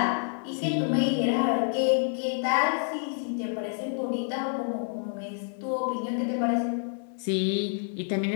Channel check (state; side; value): silent; right; 59 dB below the other